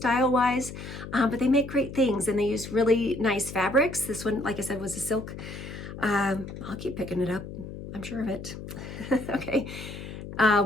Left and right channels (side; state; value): left; noise; hum, 10 dB below the sound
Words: but they make great things, and they use really nice fabrics. This one, like I said, was a silk. I'll keep picking it up. I'm sure of it. Okay.